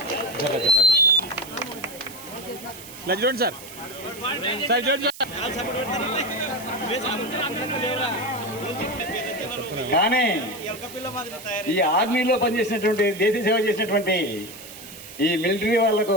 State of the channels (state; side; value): noise; right; hiss, 16 dB below the sound